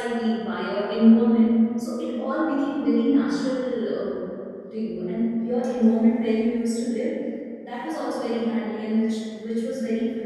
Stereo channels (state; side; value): identical; both; correlation 1.00